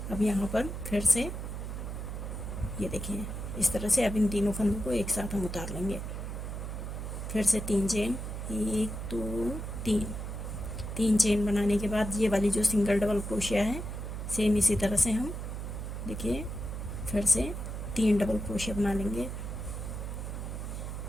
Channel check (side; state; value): right; noise; hum, 6 dB below the sound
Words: अब यहाँ पर फिर से ये देखिए इस तरह से अब इन तीनों फंदों को एक साथ हम उतार लेंगे। फिर से 3 चेन, 1 2 3। 3 चेन बनाने के बाद ये वाली जो सिंगल डबल क्रोशिया है सेम इसी तरह से हम देखिए फिर से 3 डबल क्रोशिया बना लेंगे।